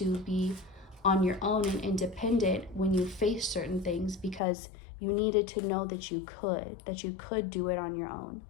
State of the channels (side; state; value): right; drops out; at 4.4 s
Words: be on your own and independent when you face certain things, because you needed to know that you could do it on your own.